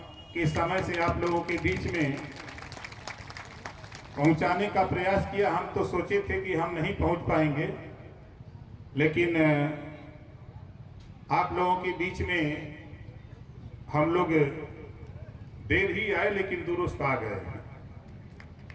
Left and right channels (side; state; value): both; identical; correlation 1.00